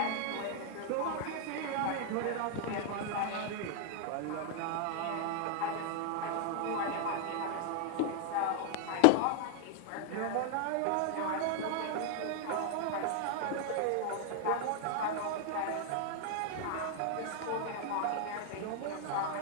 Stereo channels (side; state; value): both; different; correlation 0.00